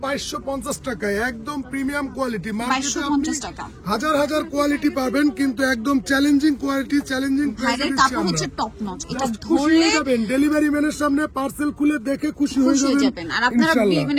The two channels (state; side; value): identical; both; correlation 1.00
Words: 2250 টাকায়, একদম প্রিমিয়াম কোয়ালিটি। 2250 টাকা হাজার হাজার কোয়ালিটি পাবেন, কিন্তু একদম চ্যালেঞ্জিং কোয়ালিটি, চ্যালেঞ্জিং ভাইদের কাপড় হচ্ছে টপ নচ। এটা ধরে যাবেন ডেলিভারি ম্যানের সামনে, পার্সেল খুলে দেখে খুশি হয়ে যাবেন। আর আপনারা